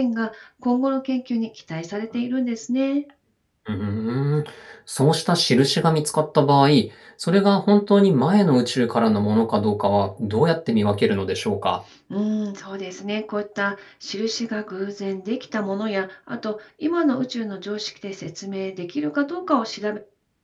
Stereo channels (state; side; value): identical; both; correlation 1.00